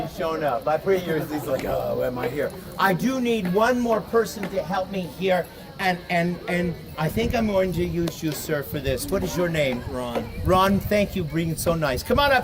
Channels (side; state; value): both; identical; correlation 1.00